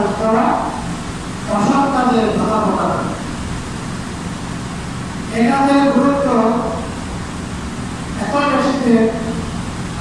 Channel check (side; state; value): both; identical; correlation 1.00